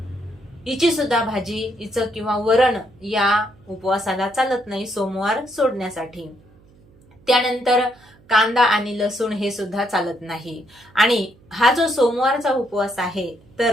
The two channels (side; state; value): right; noise; hum, 28 dB below the sound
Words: हिची सुद्धा भाजी, हिचं किंवा वरण या उपवासाला चालत नाही सोमवार सोडण्यासाठी. त्यानंतर कांदा आणि लसूण हे सुद्धा चालत नाही. आणि हा जो सोमवारचा उपवास आहे